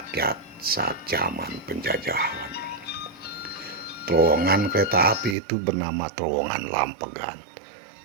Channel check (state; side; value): drops out; left; at 5.4 s